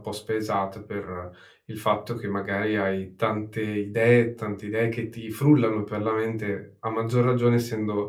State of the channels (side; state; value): both; identical; correlation 1.00